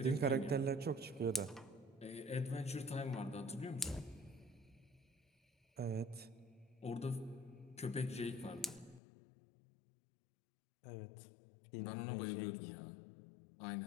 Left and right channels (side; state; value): right; drops out; at 9.0 s